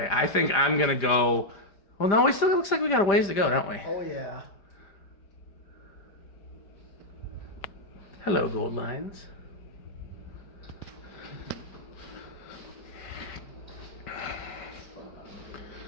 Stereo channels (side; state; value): right; late; 5.0 ms